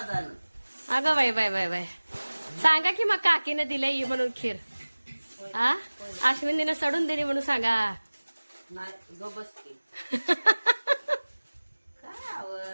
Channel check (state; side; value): inverted; both; correlation -1.00